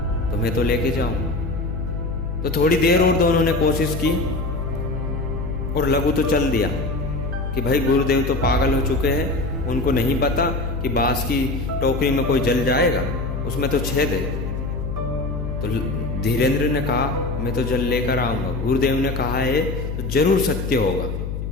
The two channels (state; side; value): noise; left; hum, 4 dB below the sound